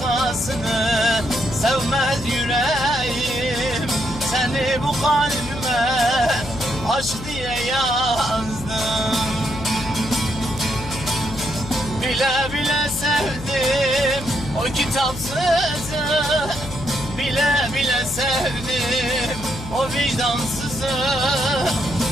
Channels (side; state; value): left; noise; hum, 11 dB below the sound